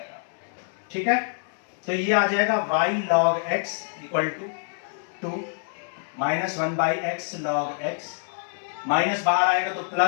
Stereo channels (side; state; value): right; silent; digital silence